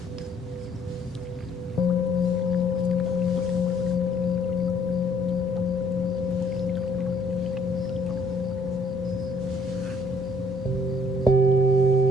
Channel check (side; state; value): both; normal; correlation 0.62